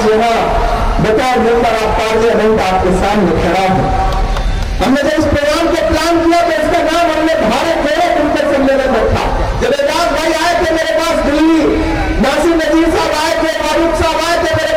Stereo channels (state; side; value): identical; both; correlation 1.00